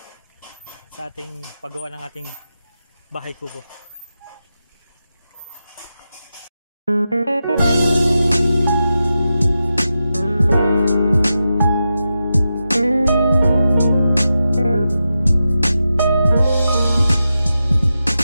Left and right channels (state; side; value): inverted; both; correlation -0.90